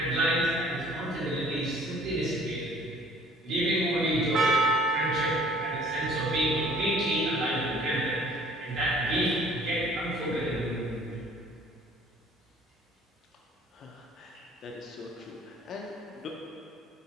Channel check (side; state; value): both; normal; correlation 0.55